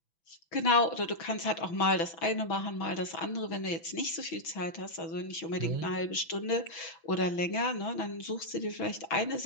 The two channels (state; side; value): late; right; 6.0 ms